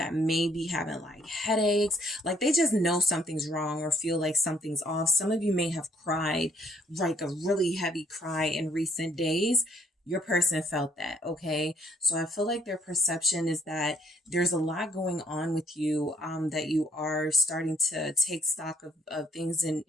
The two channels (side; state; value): both; normal; correlation 0.64